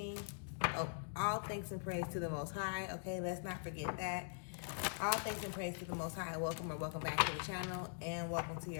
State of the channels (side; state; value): right; silent; digital silence